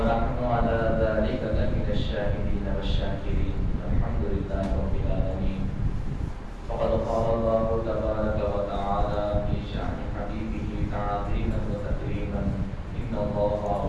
على ذلك لمن الشاهدين والشاكرين. الحمد لله رب العالمين. فقد قال الله تبارك وتعالى في شأن حبيبه تعظيما وتكريما: إن الله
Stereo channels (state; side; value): identical; both; correlation 1.00